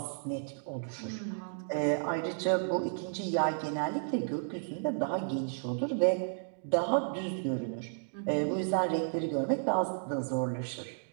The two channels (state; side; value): silent; left; digital silence